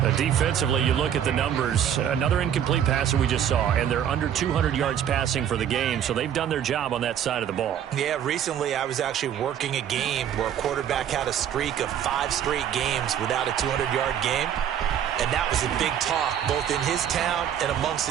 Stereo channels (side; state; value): left; quieter; 9.5 dB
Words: Defensively, you look at the numbers. Another incomplete pass that we just saw, and they're under 200 yards passing for the game, so they've done their job on that side of the ball. Yeah, recently I was actually working a game where a quarterback had a streak of 5 straight games without a 200-yard game. And that was a big talk, both in his town and amongst